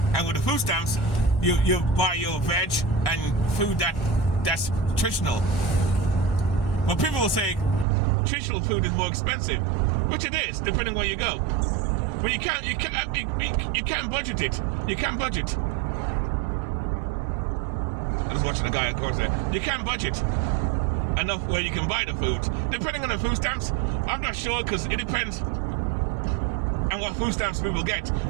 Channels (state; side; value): drops out; left; at 7.9 s